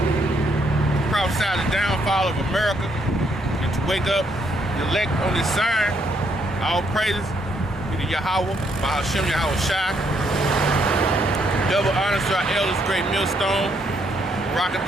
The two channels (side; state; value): both; normal; correlation 0.73